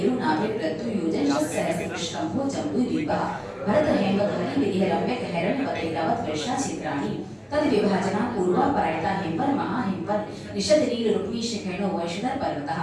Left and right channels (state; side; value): identical; both; correlation 1.00